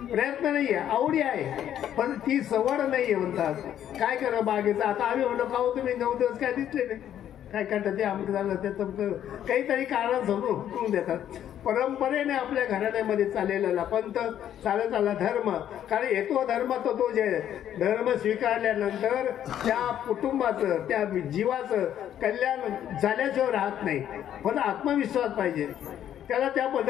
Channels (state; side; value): quieter; right; 10.6 dB